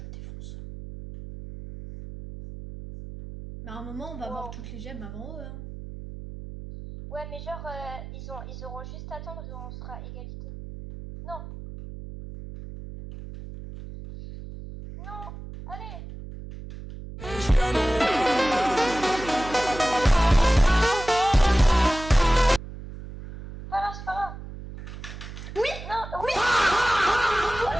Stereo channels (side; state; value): right; noise; hum, 12 dB below the sound